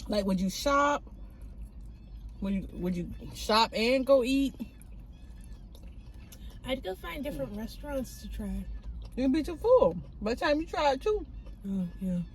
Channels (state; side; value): identical; both; correlation 1.00